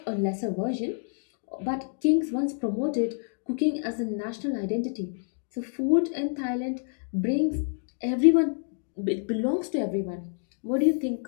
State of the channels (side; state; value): right; silent; 59 dB below the other